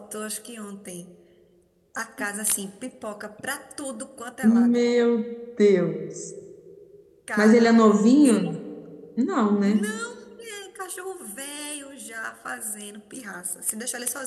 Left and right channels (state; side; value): identical; both; correlation 1.00